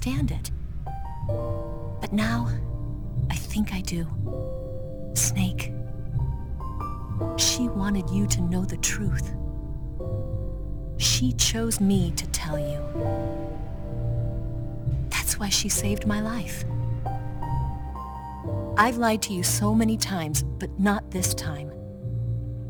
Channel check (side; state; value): both; identical; correlation 1.00